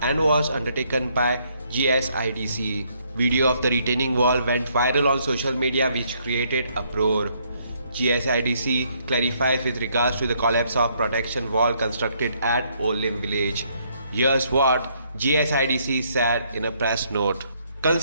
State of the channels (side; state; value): both; inverted; correlation -0.70